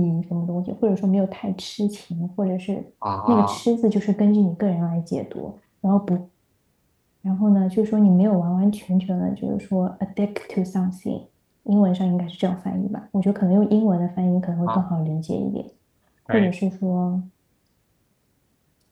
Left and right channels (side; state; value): both; identical; correlation 1.00